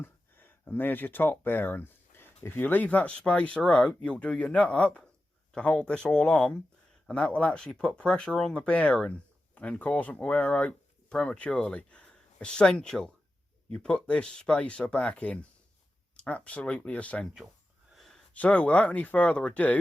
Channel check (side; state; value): both; normal; correlation 0.92